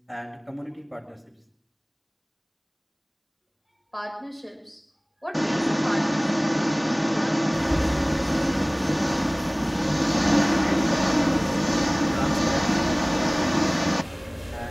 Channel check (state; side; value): identical; both; correlation 1.00